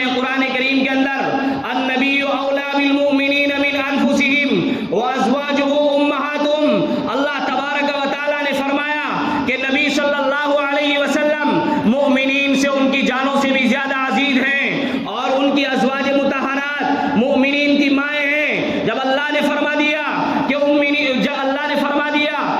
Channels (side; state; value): both; identical; correlation 1.00